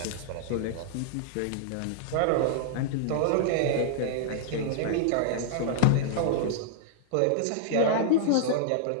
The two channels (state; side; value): different; both; correlation -0.01